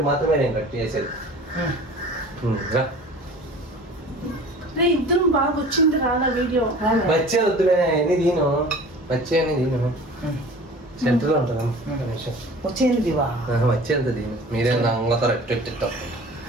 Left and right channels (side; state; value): both; normal; correlation 0.43